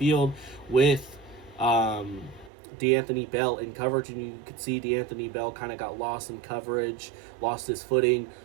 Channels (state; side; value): drops out; left; at 2.5 s